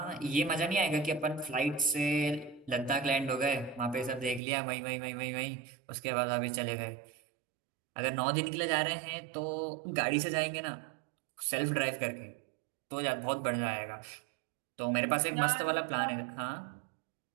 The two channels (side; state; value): left; drops out; at 4.4 s